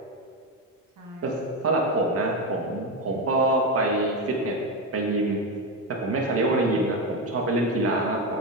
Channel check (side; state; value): both; normal; correlation 0.13